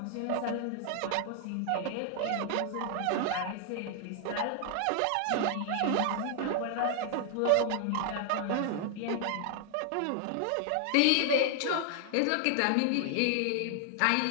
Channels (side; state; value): both; different; correlation 0.00